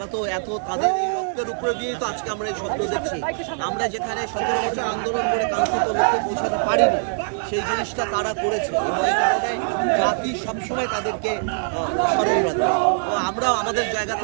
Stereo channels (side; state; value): left; silent; digital silence